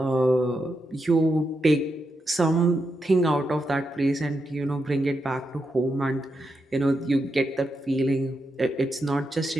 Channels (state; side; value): normal; both; correlation 0.85